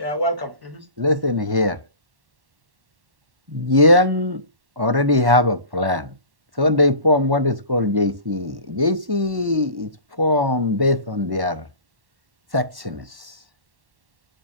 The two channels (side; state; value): left; late; 1.1 ms